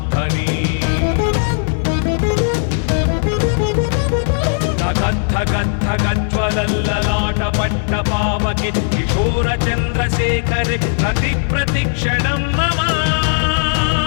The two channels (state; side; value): silent; right; digital silence